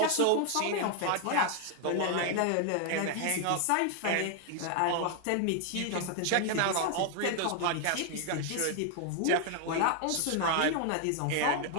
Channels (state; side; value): different; both; correlation 0.00